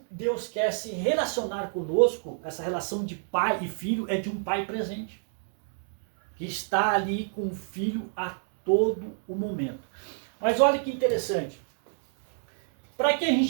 Deus quer se relacionar conosco, essa relação de pai e filho, é de um pai presente, que está ali com o filho a todo o momento. Mas olha que interessante. Para que a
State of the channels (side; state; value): left; silent; digital silence